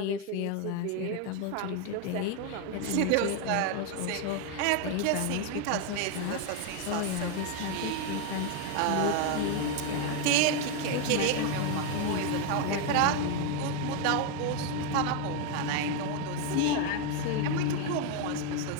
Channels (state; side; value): different; both; correlation 0.01